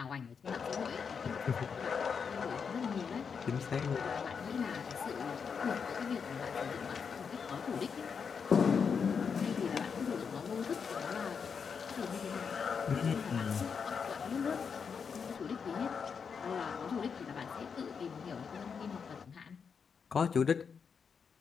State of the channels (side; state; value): right; quieter; 6.2 dB